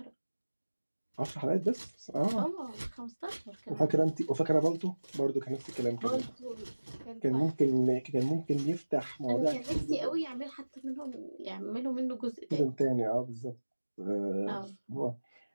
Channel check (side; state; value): both; inverted; correlation -1.00